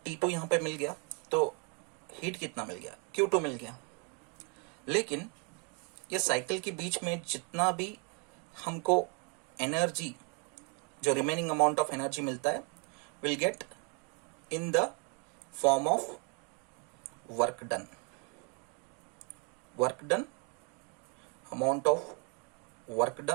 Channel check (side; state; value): left; quieter; 35.6 dB